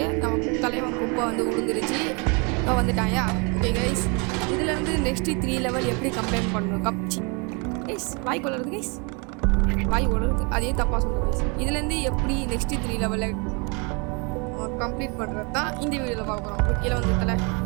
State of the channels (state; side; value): quieter; left; 32.5 dB